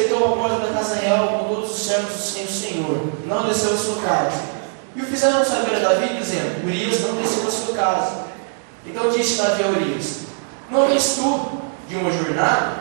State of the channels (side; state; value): left; silent; digital silence